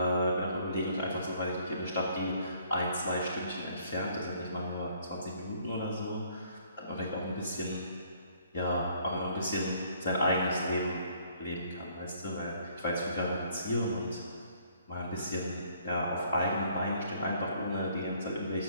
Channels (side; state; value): both; inverted; correlation -0.63